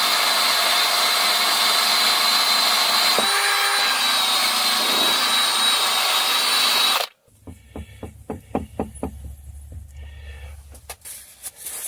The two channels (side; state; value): both; identical; correlation 1.00